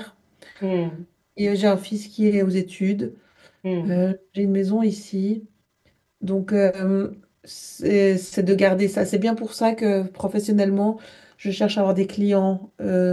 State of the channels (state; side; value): identical; both; correlation 1.00